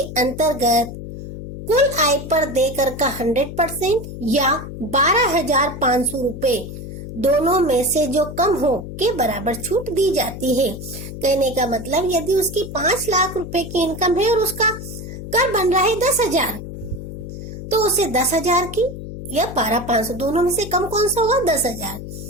अंतर्गत कुल आय पर देकर का 100% या 12,500 रुपए दोनों में से जो कम हो के बराबर छूट दी जाती है। कहने का मतलब यदि उसकी 5 लाख रुपए की इनकम है और उसका कर बन रहा है 10,000 तो उसे 10,000 की या 12,500 दोनों में से कम कौन सा होगा? 10,000।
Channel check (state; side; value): noise; left; hum, 10 dB below the sound